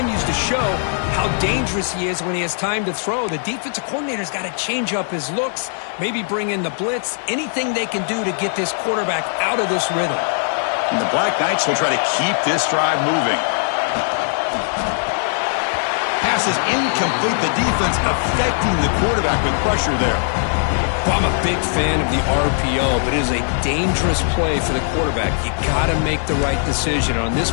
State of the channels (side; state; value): right; silent; digital silence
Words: to show how dangerous he is when he has time to throw. The defensive coordinator's got to change up his looks, maybe bring in the blitz, anything they can do to get this quarterback out of this rhythm. And the Black Knights will try to keep this drive moving. Pass is incomplete. The defense affecting the quarterback with pressure there. Well, I'm a big fan of the RPO, but it is a dangerous play for the quarterback. You got to make the right decision. On this